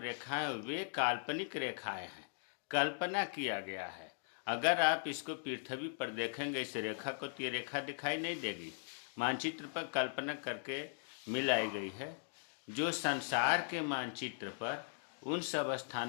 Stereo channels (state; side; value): silent; right; digital silence